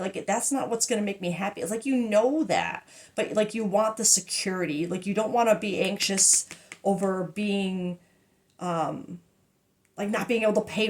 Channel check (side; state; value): both; identical; correlation 1.00